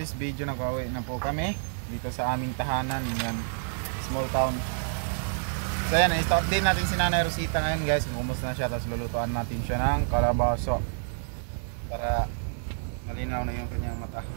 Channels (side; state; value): left; silent; digital silence